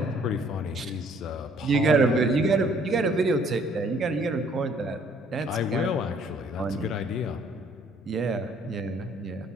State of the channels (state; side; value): normal; both; correlation 0.61